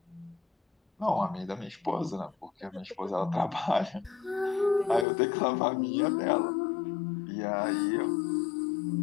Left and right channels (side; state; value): right; drops out; at 5.1 s